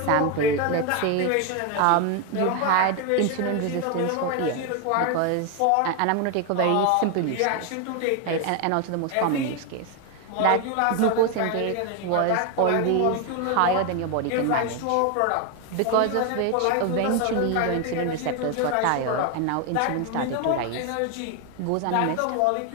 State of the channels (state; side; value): different; both; correlation 0.01